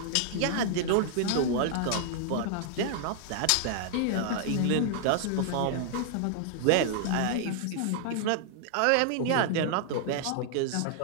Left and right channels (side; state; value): both; different; correlation -0.01